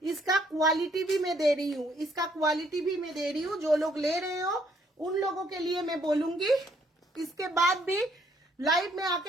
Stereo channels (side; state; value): both; normal; correlation 0.67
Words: इसका क्वालिटी भी मैं दे रही हूँ, इसका क्वालिटी भी मैं दे रही हूँ। जो लोग ले रहे हो उन लोगों के लिए मैं बोलूंगी। इसके बाद भी लाइव में